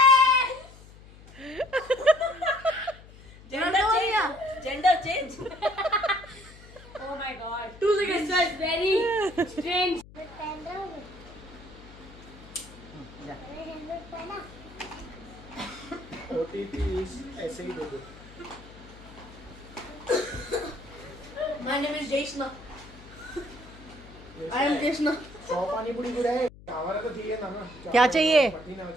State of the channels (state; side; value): noise; left; hum, 20 dB below the sound